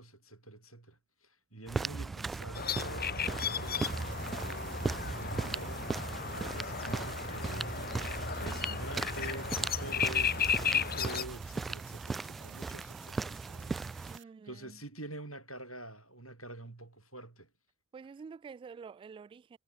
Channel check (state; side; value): normal; both; correlation 0.44